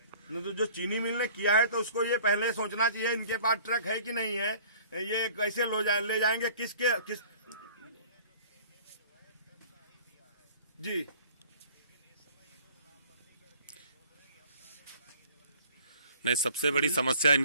नहीं तो जो चीनी मिल ने किया है तो उसको ये पहले सोचना चाहिए इनके पास ट्रक है कि नहीं है, ये कैसे ले जाएंगे, किस जी। नहीं, सबसे बड़ी समस्या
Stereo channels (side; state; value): both; inverted; correlation -0.50